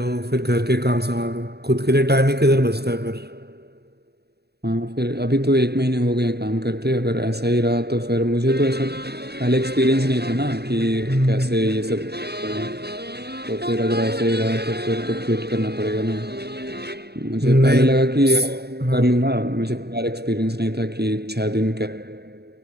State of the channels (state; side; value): late; left; 0.47 ms